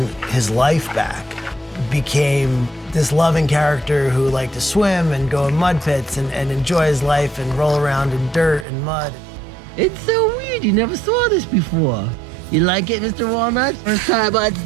his life back. Became this loving character who liked to swim and go in mud pits and enjoy his life and roll around in dirt and mud. It's so weird, you never saw this before. You like it, Mr. Walnut? First time on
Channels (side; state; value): left; drops out; at 8.7 s